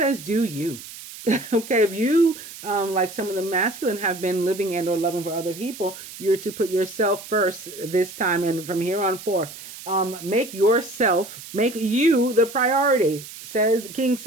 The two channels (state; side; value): noise; right; hiss, 14 dB below the sound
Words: do you. Okay, if you, like some of the masculine, have been living and or loving for other people, you're to put yourself first this time and from here on forth. Make you the priority, says King